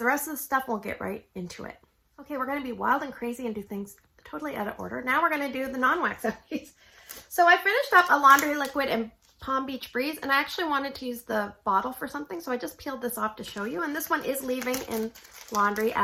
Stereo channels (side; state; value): both; identical; correlation 1.00